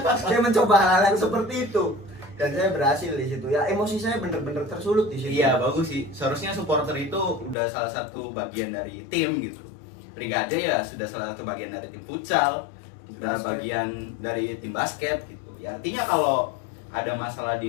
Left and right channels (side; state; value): right; drops out; at 7.6 s